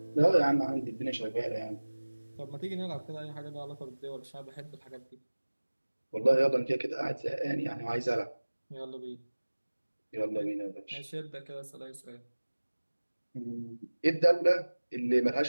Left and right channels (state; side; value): inverted; both; correlation -1.00